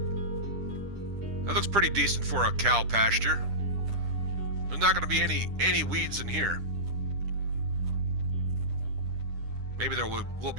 That looks pretty decent for a cow pasture. There's not going to be any weeds in here. Maybe there will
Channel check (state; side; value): late; left; 10 ms